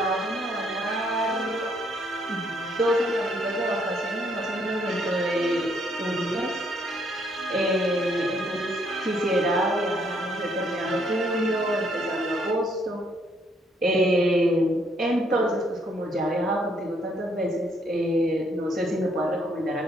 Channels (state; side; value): normal; both; correlation 0.69